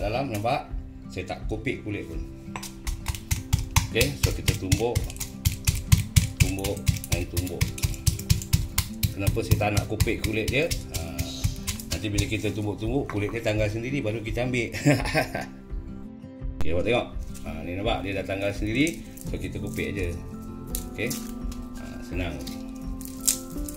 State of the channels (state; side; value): identical; both; correlation 1.00